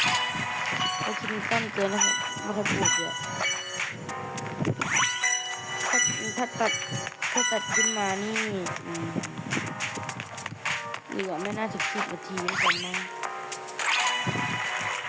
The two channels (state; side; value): identical; both; correlation 1.00